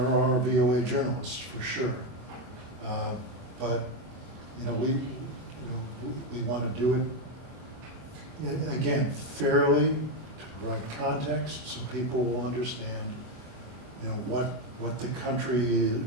are VOA journalists, for sure. But, you know, we want to do it, again, fairly, to provide context so people will understand, you know, what the country,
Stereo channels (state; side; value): late; left; 24 ms